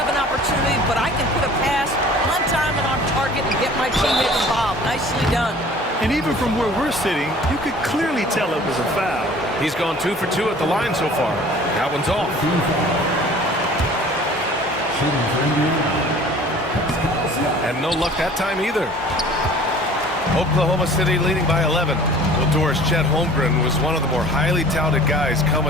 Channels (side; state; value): both; normal; correlation 0.48